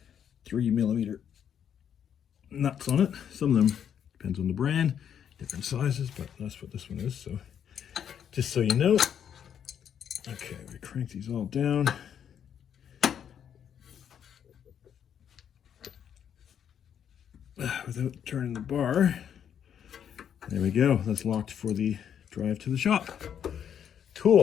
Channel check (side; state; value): right; quieter; 8.7 dB